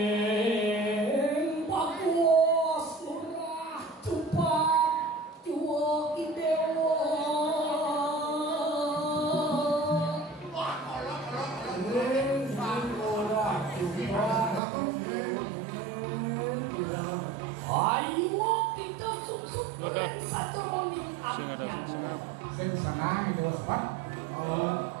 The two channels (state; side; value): drops out; left; at 14.6 s